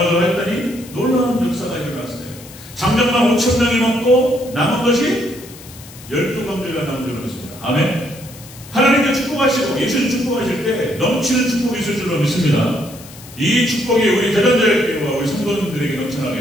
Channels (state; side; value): noise; left; hiss, 18 dB below the sound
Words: 했더니 놀라운 역사가 일어났어요. 장정만 5,000명이 먹고 남은 것이 12광주가 남은 줄로 믿습니다. 아멘. 하나님께 축복하시고 예수님 축복하실 때 넘치는 축복이 있을 줄로 믿습니다. 이 축복이 우리 대전자교회와 우리 성도님들에게